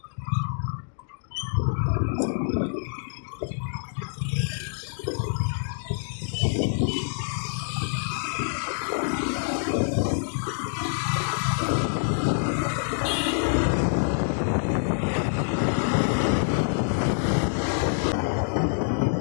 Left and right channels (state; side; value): silent; right; digital silence